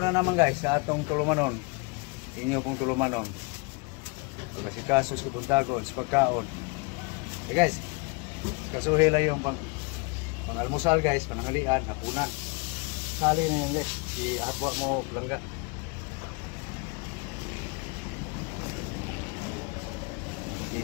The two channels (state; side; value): quieter; right; 30.7 dB